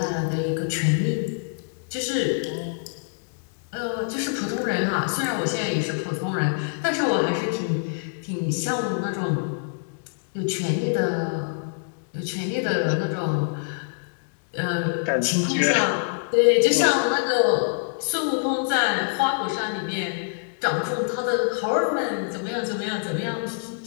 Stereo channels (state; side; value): silent; right; digital silence